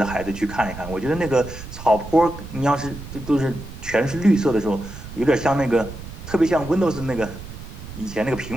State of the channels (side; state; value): right; noise; rumble, 12 dB below the sound